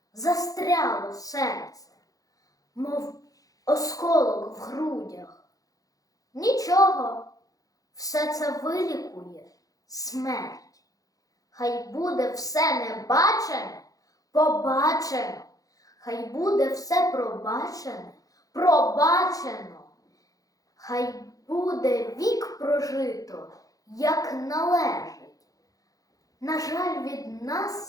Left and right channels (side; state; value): right; late; 0.17 ms